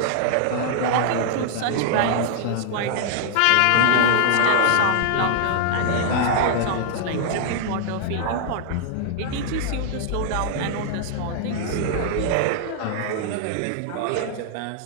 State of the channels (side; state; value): both; different; correlation -0.01